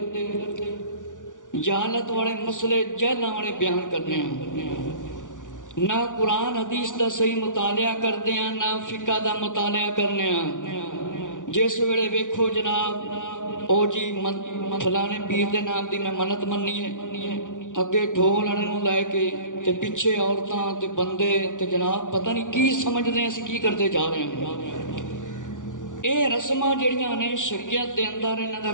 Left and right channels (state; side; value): late; right; 0.87 ms